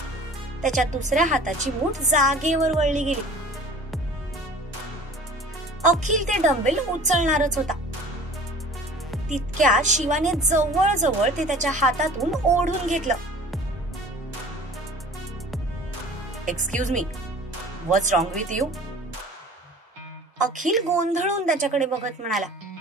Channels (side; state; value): both; normal; correlation 0.44